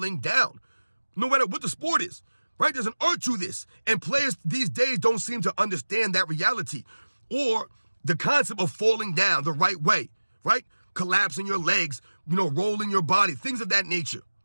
down, no matter what the sport is, right? There's an art to this. And players these days don't seem to understand that reality or the concept of falling down the right way, right? Collapsing your legs, rolling your body, things of that nature.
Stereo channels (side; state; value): both; inverted; correlation -1.00